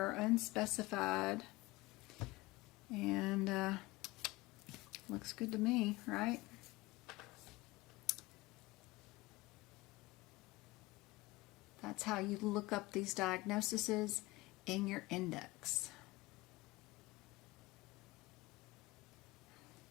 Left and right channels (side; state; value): right; quieter; 20.8 dB